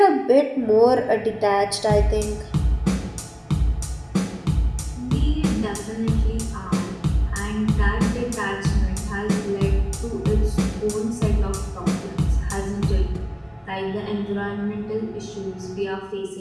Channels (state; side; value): identical; both; correlation 1.00